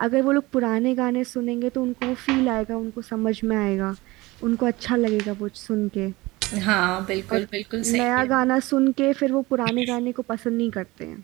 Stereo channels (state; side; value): quieter; left; 21.1 dB